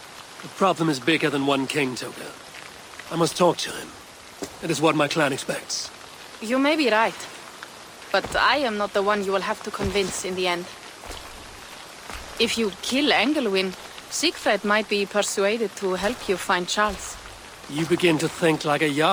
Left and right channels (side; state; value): both; identical; correlation 1.00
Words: The problem is bigger than one king, Toga. I must talk to him. It is what my clan expects. You may be right. But I am not the one you will have to convince in the end. If you kill Engelwin, Siegfried might be persuaded to help you find Charles. You begin to think like a